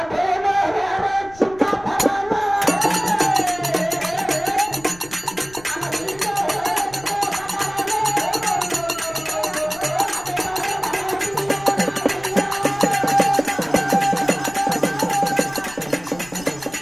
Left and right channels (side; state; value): left; noise; rumble, 21 dB below the sound